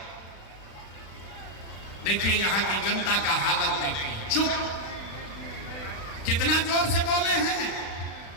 देखिए यहाँ की जनता का हालत देखिए, चुप, कितना जोर से बोले हैं,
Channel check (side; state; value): right; late; 36 ms